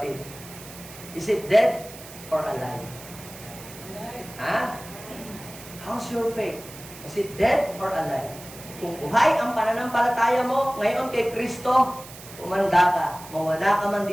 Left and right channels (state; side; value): noise; right; hiss, 16 dB below the sound